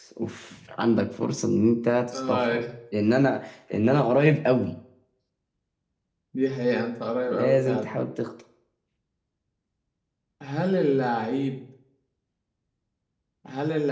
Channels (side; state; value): both; identical; correlation 1.00